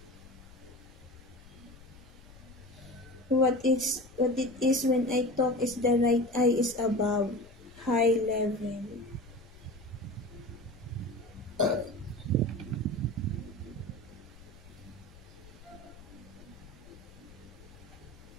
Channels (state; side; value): noise; left; rumble, 20 dB below the sound